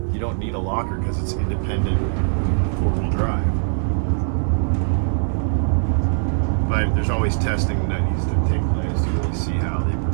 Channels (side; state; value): left; silent; digital silence